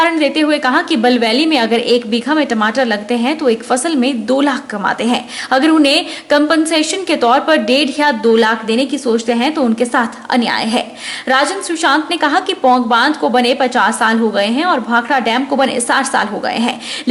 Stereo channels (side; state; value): both; identical; correlation 1.00